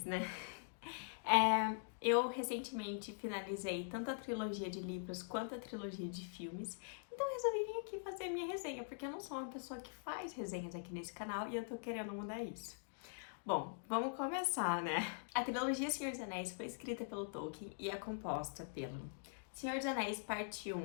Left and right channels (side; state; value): right; silent; digital silence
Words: né? Eu recentemente finalizei tanto a trilogia de livros quanto a trilogia de filmes, então eu resolvi vir aqui fazer a minha resenha, porque eu não sou uma pessoa que faz resenhas aqui nesse canal e eu tô querendo mudar isso. Bom, vamos começar, né? A trilogia Senhor dos Anéis foi escrita pelo Tolkien e é composta pelo Senhor dos Anéis Parte